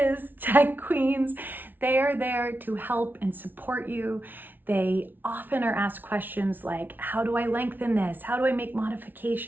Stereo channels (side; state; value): left; late; 0.090 ms